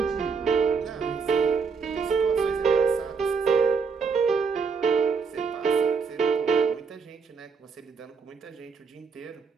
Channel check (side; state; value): left; quieter; 5.4 dB